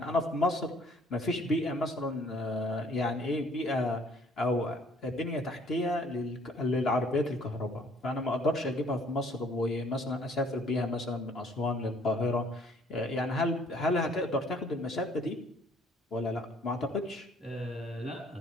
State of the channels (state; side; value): normal; both; correlation 0.59